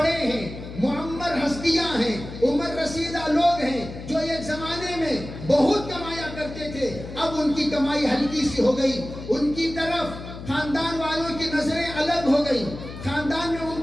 ہیں، معمر ہستیاں ہیں، عمر رسیدہ لوگ ہیں جو ایک زمانے میں بہت کمایا کرتے تھے، اب ان کی کمائی ہلکی سی ہو گئی، ان کی طرف خاندان والوں کی نظریں الگ ہو گئی، خاندان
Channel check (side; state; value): left; noise; hum, 12 dB below the sound